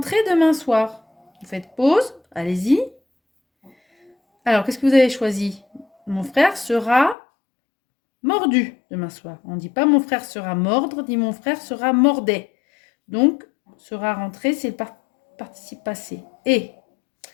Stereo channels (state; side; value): drops out; right; at 7.2 s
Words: demain soir. Vous faites pause, allez-y. Alors, qu'est-ce que vous avez choisi? Mon frère sera mordu demain soir. On ne dit pas mon frère sera mordre, dit mon frère sera mordait. Donc, sera rentré, c'est le participe passé. Et